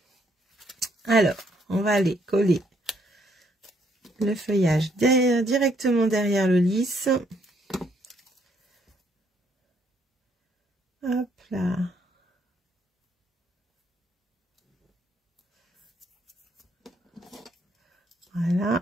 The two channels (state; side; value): normal; both; correlation 0.70